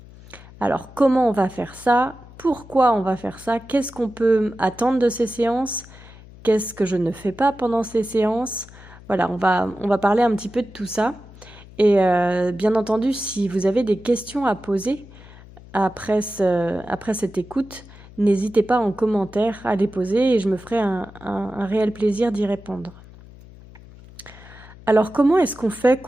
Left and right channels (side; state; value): left; noise; hum, 20 dB below the sound